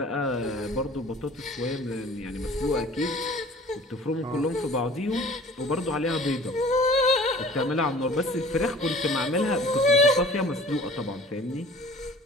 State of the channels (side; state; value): both; normal; correlation 0.47